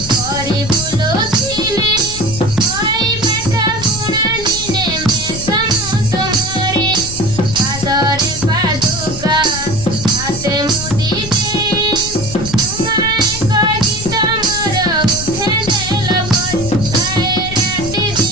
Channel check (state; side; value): noise; left; rumble, 10 dB below the sound